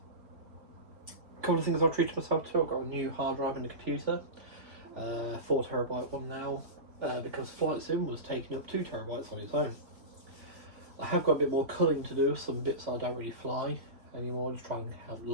couple of things I've treated myself to. I've got a new hard drive in the computer, 4TB one now, because Flight Sim was taking up 2TB on its own. I have got a bit more culling to do, some bits I don't really fly anymore, just trying to have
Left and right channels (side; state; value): left; late; 3.7 ms